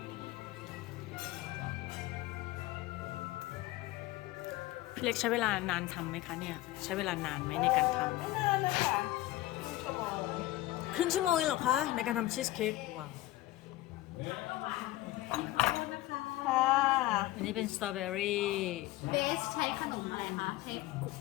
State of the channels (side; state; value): right; quieter; 17.2 dB